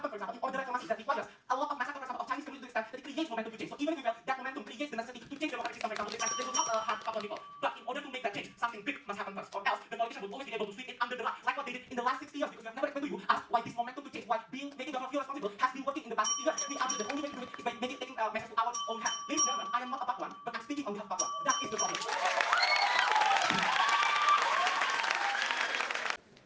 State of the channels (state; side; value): identical; both; correlation 1.00